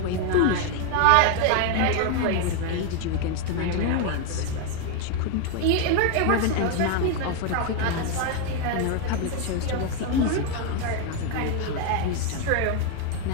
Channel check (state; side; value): different; both; correlation 0.01